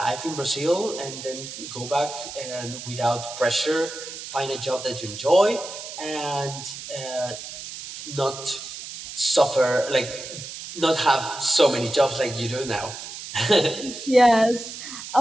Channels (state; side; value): noise; right; hiss, 10 dB below the sound